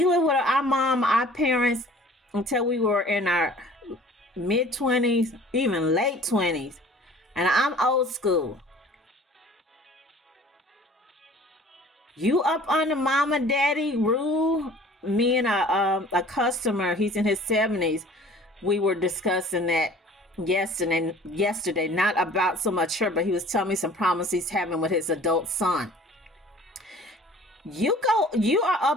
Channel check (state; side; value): normal; both; correlation 0.49